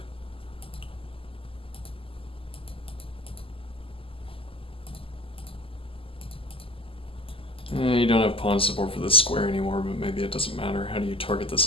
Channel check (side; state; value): right; late; 0.26 ms